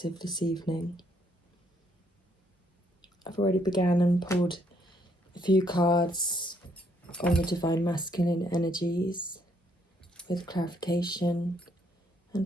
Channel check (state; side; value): normal; both; correlation 0.70